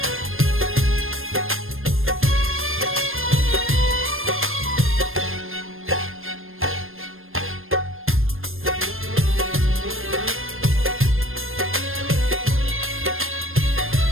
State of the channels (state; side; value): late; left; 0.60 ms